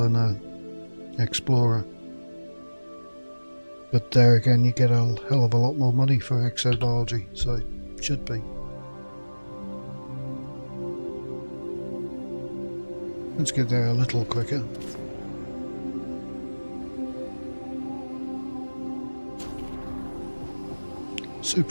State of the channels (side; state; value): both; inverted; correlation -1.00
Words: an explorer. But there again, you get a hell of a lot more money for exobiology, so it should be. Let's get there a little quicker.